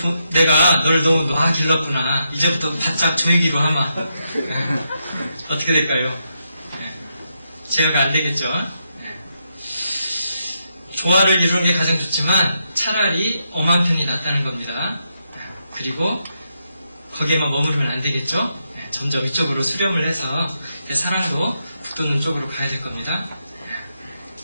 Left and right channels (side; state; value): both; inverted; correlation -0.81